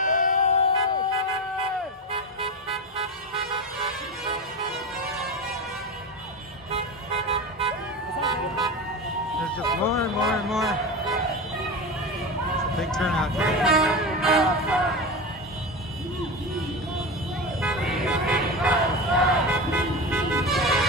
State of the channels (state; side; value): normal; both; correlation 0.23